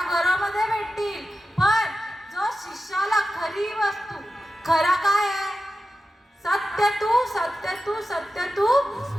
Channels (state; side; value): normal; both; correlation 0.92